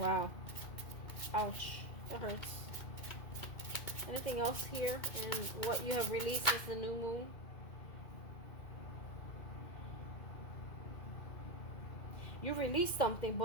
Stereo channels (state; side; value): late; right; 2.1 ms